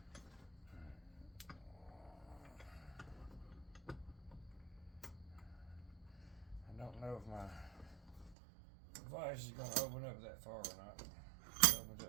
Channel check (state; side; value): drops out; left; at 8.3 s